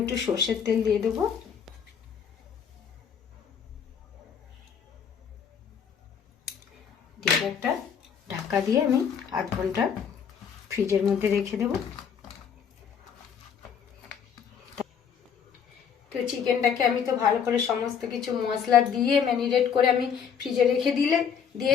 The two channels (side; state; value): right; quieter; 7.4 dB